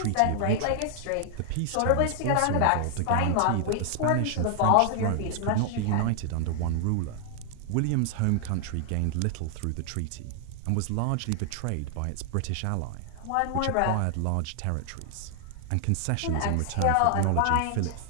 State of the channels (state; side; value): different; both; correlation 0.00